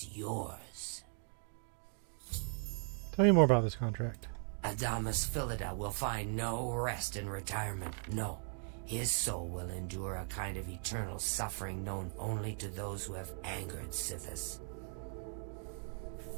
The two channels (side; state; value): left; silent; 52 dB below the other